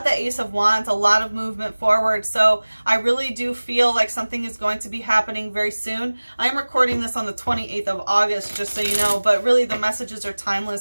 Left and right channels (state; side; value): inverted; both; correlation -1.00